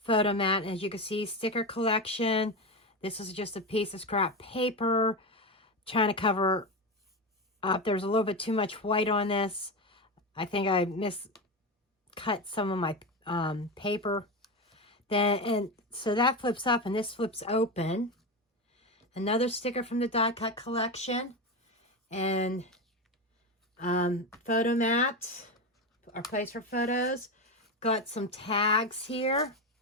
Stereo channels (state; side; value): normal; both; correlation 0.17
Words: as you can see, sticker collection. This is just a piece of scrap paper, trying to cover up. There's a little bit too much white on this. I think I miscut some of my paper. And so that flips up, and this flips open. Another sticker from the die cut collection, and photo mat, our place for photos. Got some tags here.